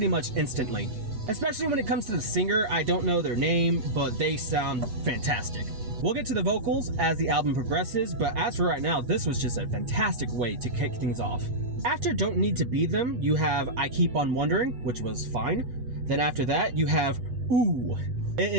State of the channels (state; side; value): late; left; 8.3 ms